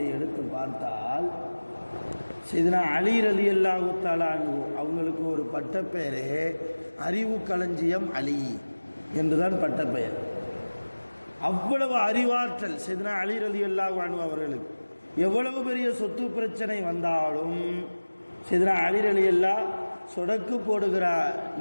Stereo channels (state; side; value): inverted; both; correlation -1.00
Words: எடுத்து பார்த்தால் சையதுனா அலி ரலியல்லாஹு தஆலா அன்ஹு அவங்களுக்கு ஒரு பட்டப்பெயரே அறிவு களஞ்சியம் அலி என்றுதான் பட்டப்பெயர். அவ்வளவு அறிவாற்றல் சையதுனா அலி ரலியல்லாஹு அன்ஹு அவர்களுக்கு. எவ்வளவு பெரிய சொத்து பிரச்சனை வந்தாலும் சையதுனா அலி ரலியல்லாஹு சொடக்கு போடுகிற